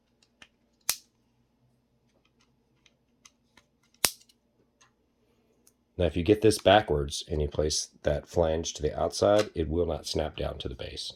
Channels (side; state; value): both; identical; correlation 1.00